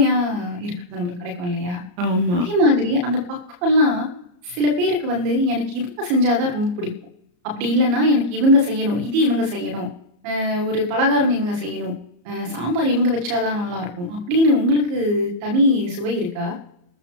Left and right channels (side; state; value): left; late; 34 ms